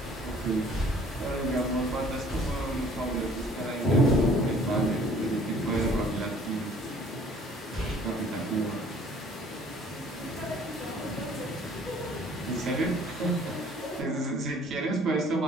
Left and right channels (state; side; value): normal; both; correlation 0.55